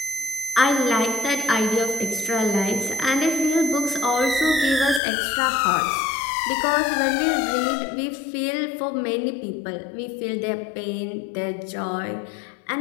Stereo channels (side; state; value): right; drops out; at 5.0 s